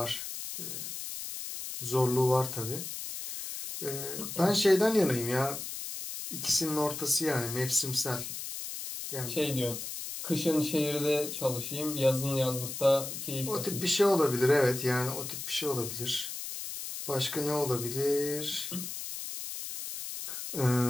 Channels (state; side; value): noise; left; hiss, 7 dB below the sound